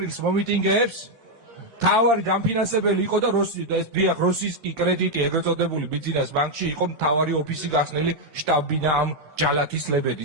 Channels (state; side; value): late; left; 1.7 ms